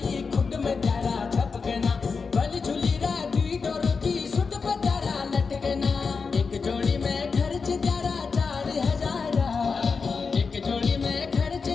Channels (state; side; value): quieter; right; 5.0 dB